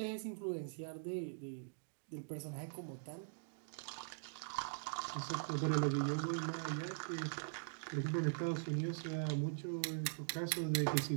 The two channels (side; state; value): left; silent; digital silence